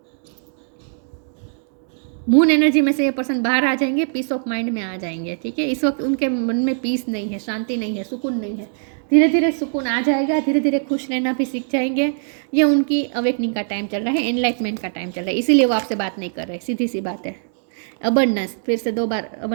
मून एनर्जी में से ये पर्सन बाहर आ जाएंगे, पीस ऑफ माइंड में आ जाएंगे, ठीक है। इस वक्त उनके मन में पीस नहीं है, शांति नहीं है, सुकून नहीं है। धीरे धीरे सुकून आ जाएगा, धीरे धीरे खुश रहना भी सीख जाएंगे। ये उनकी अवेकनिंग का टाइम चल रहा है, एनलाइटमेंट का टाइम चल रहा है, इसीलिए वो आपसे बात नहीं कर रहे, सीधी सी बात है। अबंडेंस, फिर से 2 बार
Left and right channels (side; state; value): left; silent; digital silence